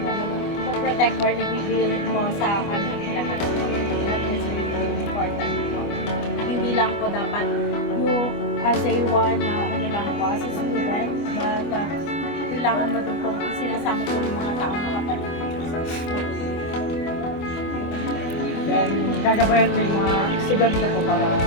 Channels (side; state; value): right; late; 25 ms